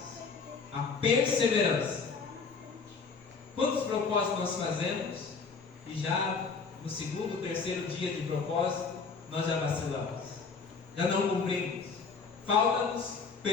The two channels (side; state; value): right; quieter; 5.0 dB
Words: a perseverança. Quantos propósitos nós fazemos e já no segundo, terceiro dia de propósito nós já vacilamos, já não cumprimos? Falta-nos